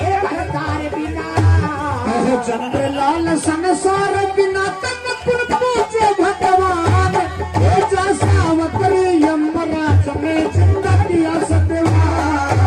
भरतार बिना। चंद्र लाल संसार बिना तक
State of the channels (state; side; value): identical; both; correlation 1.00